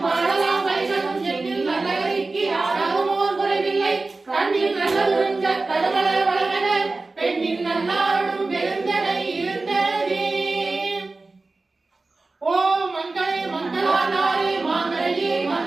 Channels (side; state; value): left; quieter; 3.5 dB